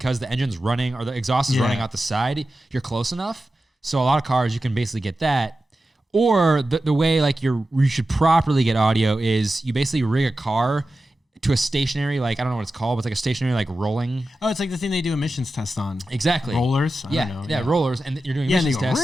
the engine's running or the exhaust is running out the side, you're close enough. So a lot of cars you can basically get that. Or the way like you should properly get audio is you basically rig a car to a stationary, like, I don't know what it's called, but it's like a stationary, like, rolling. Oh, it's like the thing they do emissions tests on. Exactly. Rollers? I don't know. Yeah, rollers. And you're doing emissions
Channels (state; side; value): normal; both; correlation 0.93